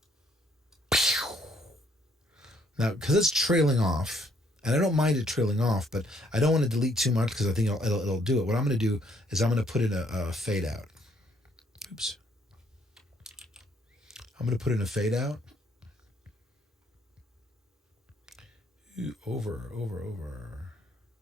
Now, because it's trailing off, and I don't mind it trailing off, but I don't want to delete too much because I think it'll do it. What I'm going to do is I'm going to put in a fade out. Oops. I'm going to put in a fade out. Ooh, over.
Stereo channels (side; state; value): both; normal; correlation 0.67